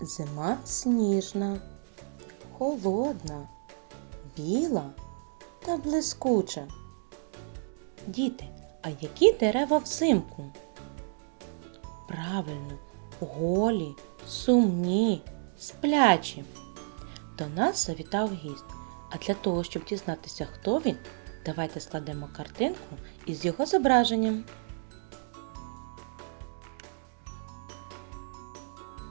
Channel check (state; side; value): silent; left; digital silence